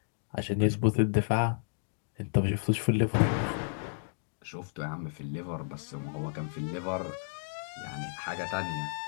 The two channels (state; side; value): silent; right; digital silence